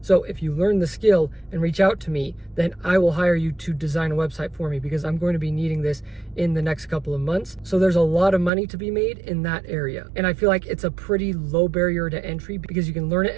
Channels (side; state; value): left; drops out; at 8.5 s